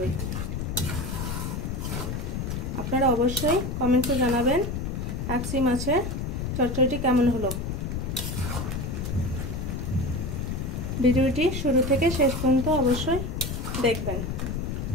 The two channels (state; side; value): noise; left; rumble, 3 dB below the sound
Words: আপনারা অবশ্যই কমেন্টে জানাবেন কাকসি মাছের চচ্চড়িটি কেমন হলো। ভিডিওটি শুরু থেকে শেষ পর্যন্ত অবশ্যই দেখবেন।